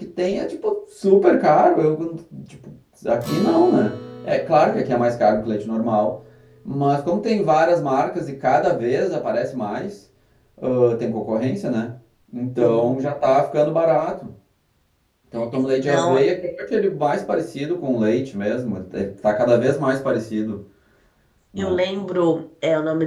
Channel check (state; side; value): identical; both; correlation 1.00